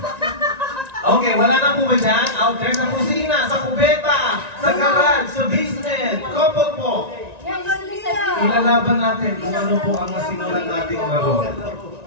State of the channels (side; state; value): left; late; 1.9 ms